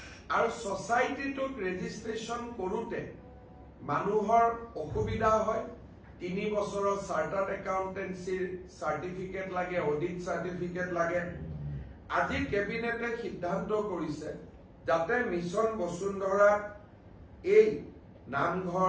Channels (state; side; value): identical; both; correlation 1.00